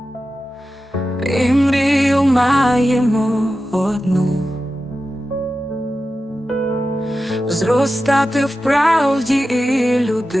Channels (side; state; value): both; normal; correlation 0.92